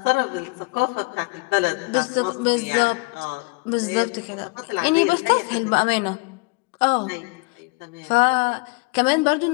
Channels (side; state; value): right; quieter; 28.5 dB